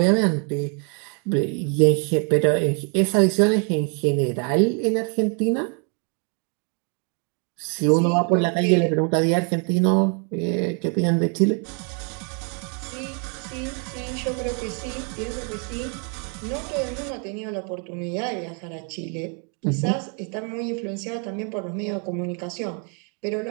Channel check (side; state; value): left; quieter; 38.9 dB